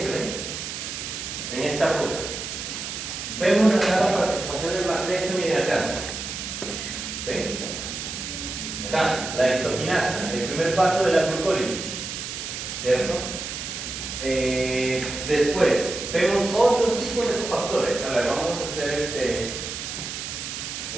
en esta ruta. Vemos acá la participación del magnesio, miren acá. ¿Ven? Acá, la exoquinasa, el primer paso de la glucólisis. ¿Cierto? Después, vemos otros tipos de cofactores. A ver, vamos a hacer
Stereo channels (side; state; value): right; noise; hiss, 6 dB below the sound